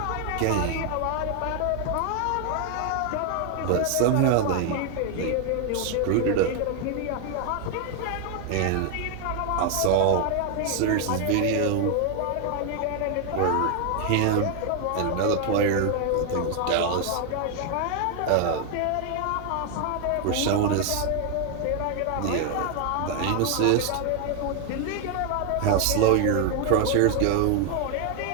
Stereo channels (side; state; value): both; different; correlation 0.00